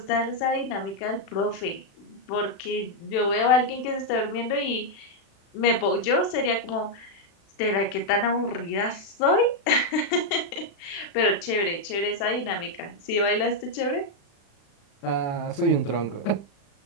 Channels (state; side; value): late; right; 36 ms